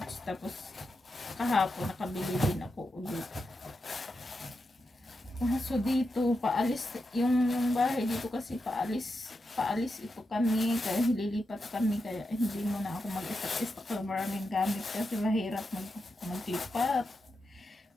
Tapos kahapon nakabili din ako ulit. So dito paalis yung bahay dito kasi paalis ito kami kaya lilipat kami kaya hindi mo na ako mag-istak ng maraming gamit kasi mahirap maglipat.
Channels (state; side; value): normal; both; correlation 0.87